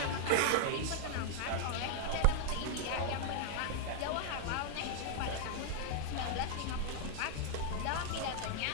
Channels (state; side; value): different; both; correlation 0.00